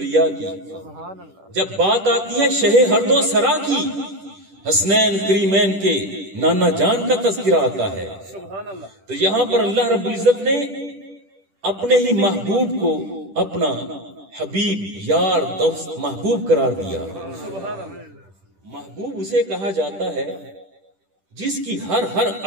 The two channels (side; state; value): left; late; 10 ms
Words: کی، جب بات آتی ہے شہ ہر دو سرا کی، حسنین کریمین کے نانا جان کا تذکرہ آتا ہے، تو یہاں پر اللہ رب العزت نے اپنے ہی محبوب کو اپنا حبیب، یار، دوست، محبوب قرار دیا. محبوب اسے کہا جاتا ہے جس کی ہر